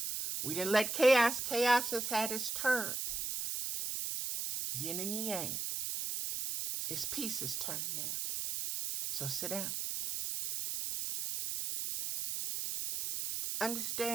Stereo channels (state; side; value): noise; right; hiss, 3 dB below the sound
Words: We didn't let chaos. Chaos has had its turn. Yin and yang. It's peace's turn now. So sit down.